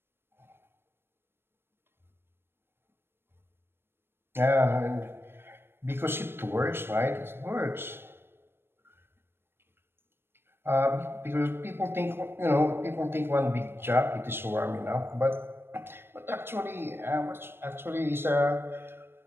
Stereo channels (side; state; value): left; late; 0.11 ms